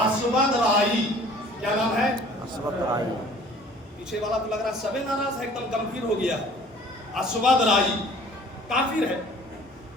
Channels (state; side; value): normal; both; correlation 0.50